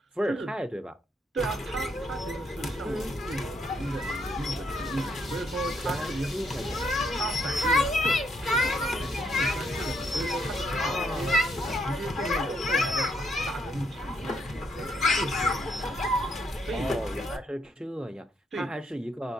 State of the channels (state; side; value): normal; both; correlation 0.74